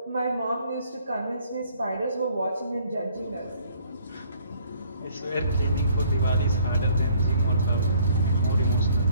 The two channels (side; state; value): both; inverted; correlation -0.60